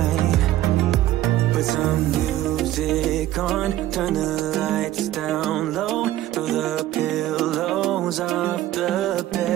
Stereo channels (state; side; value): quieter; left; 14.3 dB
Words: Put some music on, turn the lights down low, throw the pillows off the